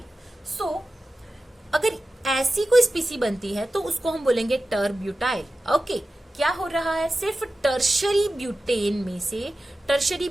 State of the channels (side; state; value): both; normal; correlation 0.94